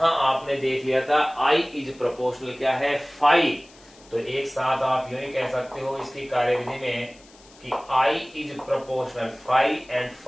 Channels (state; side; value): noise; left; hiss, 26 dB below the sound